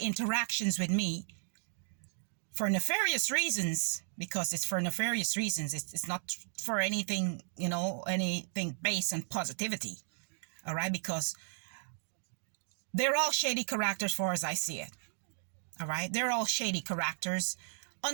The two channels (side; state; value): left; silent; digital silence